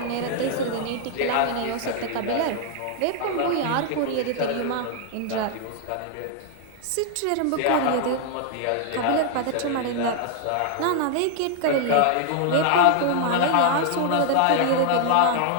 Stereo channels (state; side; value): different; both; correlation 0.00